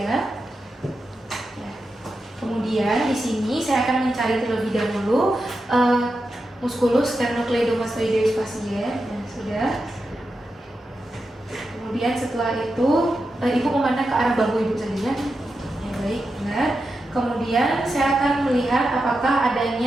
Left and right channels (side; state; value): both; normal; correlation 0.89